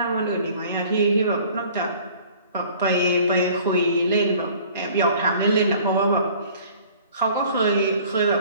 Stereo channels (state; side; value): inverted; both; correlation -0.51